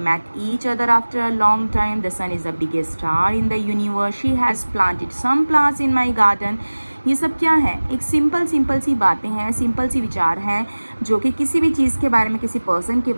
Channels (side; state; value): both; inverted; correlation -1.00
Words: each other after a long time. The sun is the biggest star in the universe. She has planted some plants in my garden. ये सब क्या है? एक simple सी बातें हैं, simple सी विचार हैं जो कि किसी भी चीज़ के बारे में, किसी पर्सन के